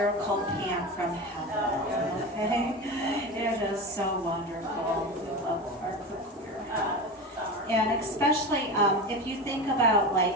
pan from heaven, okay? It is so wonderful. We love our cookware. And especially if you think about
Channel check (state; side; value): normal; both; correlation 0.25